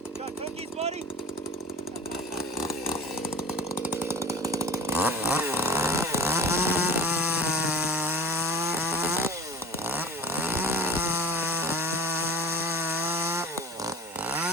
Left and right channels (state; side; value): normal; both; correlation 0.35